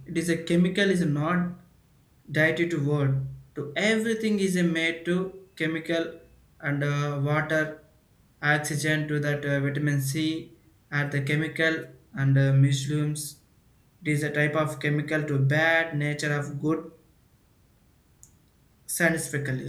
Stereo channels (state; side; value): identical; both; correlation 1.00